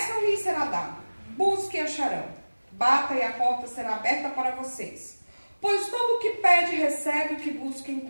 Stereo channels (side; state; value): both; inverted; correlation -1.00